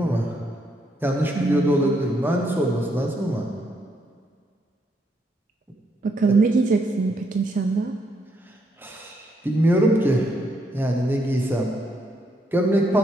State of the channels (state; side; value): normal; both; correlation 0.75